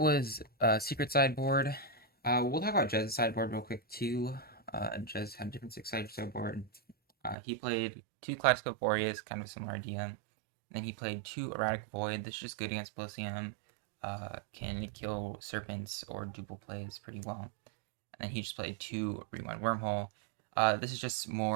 Secret Sideboard. We'll talk about Jez's sideboard real quick too. Jez had a different 6-sided sideboard. He played 2 Kaleidoscope Warriors, kind of a similar idea. Then he played 2 Erratic Void. This is just good against Polysium. Can kill Serpents or duple plays pretty well. And then he just played 2 Rewind Wormhole. This is just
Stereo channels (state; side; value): drops out; left; at 7.4 s